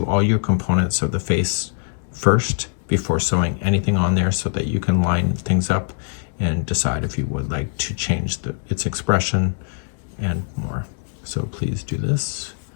all your components of the face first before sewing anything on there, so that you can line things up and decide if you would like to change its expression and more. So please do this.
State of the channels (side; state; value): right; silent; digital silence